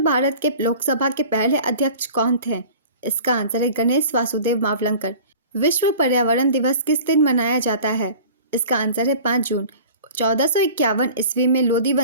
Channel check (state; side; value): inverted; both; correlation -0.42